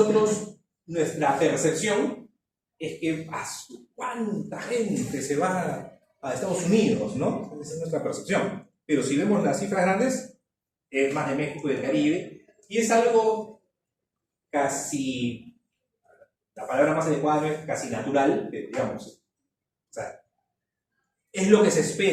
nuestra percepción es que ¿cuánta gente se va a Estados Unidos, ¿no? Esa es nuestra percepción. Pero si vemos las cifras grandes, es más de México y del Caribe, y es algo casi, la palabra más adecuada es casi natural, digamos. O sea, es lo que se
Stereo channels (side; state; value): both; identical; correlation 1.00